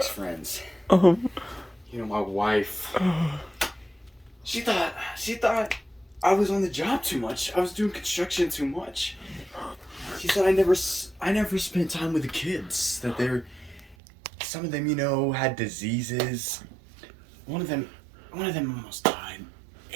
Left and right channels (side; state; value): left; drops out; at 14.0 s